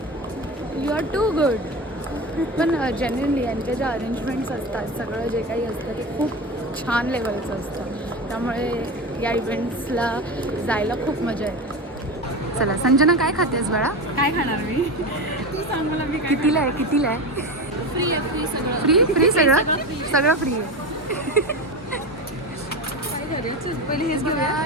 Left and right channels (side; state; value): both; normal; correlation 0.24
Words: you are too good. पण जेन्युनली यांचे जे अरेंजमेंट्स असतात, सगळं जे काही असतं ते खूप छान लेवलचं असतं. त्यामुळे या इव्हेंट्सला जायला खूप मजा येते. चला संजना, काय खातेस बाळा? काय खाणार मी? तू सांग मला मी कितीला आहे? कितीला आहे? फ्री आहे, फ्री सगळं. फ्री सगळं सगळं फ्री आहे. काय करायचं? पहिले हेच